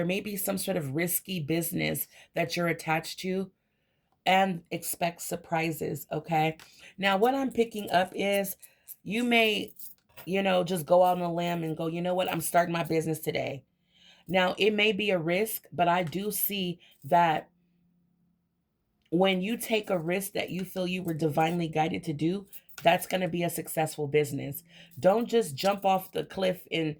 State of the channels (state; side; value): identical; both; correlation 1.00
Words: may be some sort of risky business that you're attached to, and expect surprises, okay? Now, what I'm picking up is you may, just go out on a limb and go, you know what, I'm starting my business today. Now, it may be a risk, but I do see that when you take a risk that you feel you were divinely guided to do, that's going to be a successful business. Don't just jump off the cliff and